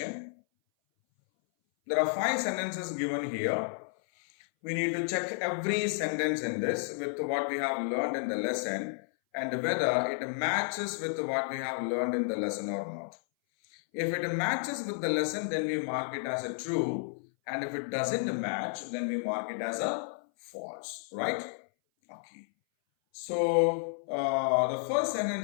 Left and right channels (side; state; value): right; silent; 57 dB below the other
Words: There are five sentences given here. We need to check every sentence in this with what we have learned in the lesson and whether it matches with what we have learned in the lesson or not. If it matches with the lesson, then we mark it as a true, and if it doesn't match, then we mark it as a false, right? Okay. So the first